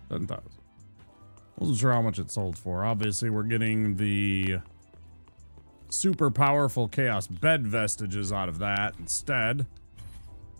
$10,000. Wasn't sure how much it sold for. Obviously, we're getting the super powerful Chaos Bed vestiges out of that instead.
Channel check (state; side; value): inverted; both; correlation -1.00